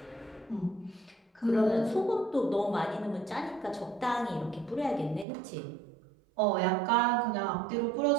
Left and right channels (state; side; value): drops out; left; at 5.2 s